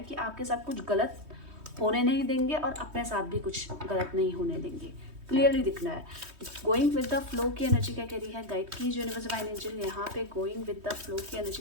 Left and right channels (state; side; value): late; left; 3.2 ms